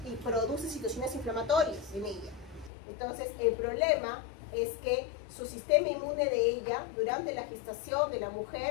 produce situaciones inflamatorias en ella. Entonces, el problema es que su sistema inmune de ella, durante la gestación de la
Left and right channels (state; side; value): drops out; right; at 2.7 s